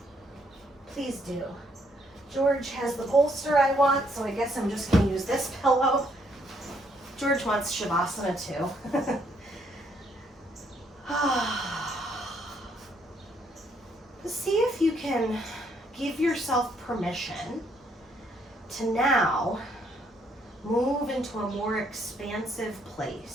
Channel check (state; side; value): normal; both; correlation 0.70